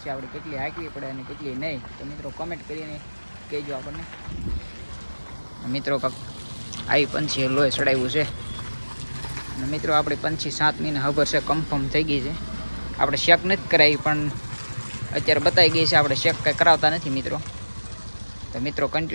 આપણે કેટલી હાંકવી પડે અને કેટલી નહીં. તો મિત્રો કમેન્ટ કરીને કહેજો આપણને. મિત્રો આવી પંછી લોહી ચડાવ્યું છે. અને મિત્રો આપણી પંછી 7 મહિના ખબર છે કન્ફર્મ થઈ ગઈ છે. આપણે શેક નથી કરાવી, પણ અત્યારે બતાવી ગઈ છે. આપણે શેક કંઈ કરાવતા નથી મિત્રો. તો મિત્રો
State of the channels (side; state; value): both; inverted; correlation -1.00